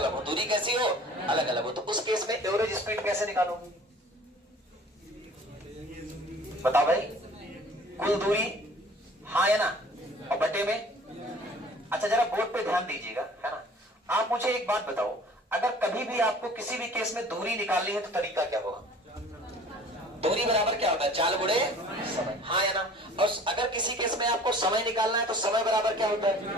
हो। दूरी कैसी हो? अलग अलग हो। तो उस केस में एवरेज स्पीड कैसे निकालो? बताओ भाई, कुल दूरी, हाँ या ना, और बटे में। अच्छा, जरा बोर्ड पे ध्यान दीजिएगा, है ना? आप मुझे एक बात बताओ, अगर कभी भी आपको किसी भी केस में दूरी निकालनी है तो तरीका क्या होगा? दूरी बराबर क्या होता है? चाल गुणे समय, हाँ या ना? और अगर किसी केस में आपको समय निकालना है तो समय बराबर क्या होता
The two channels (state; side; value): normal; both; correlation 0.48